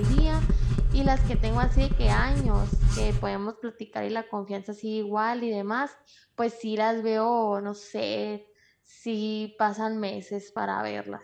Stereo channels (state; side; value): identical; both; correlation 1.00